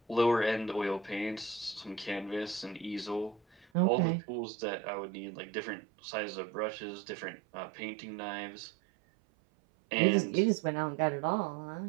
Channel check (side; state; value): left; drops out; at 3.7 s